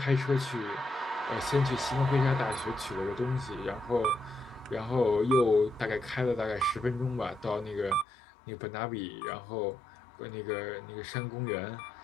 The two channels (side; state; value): right; drops out; at 8.1 s